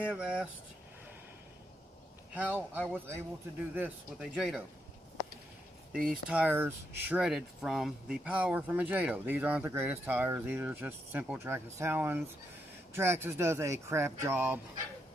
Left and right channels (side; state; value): both; normal; correlation 0.81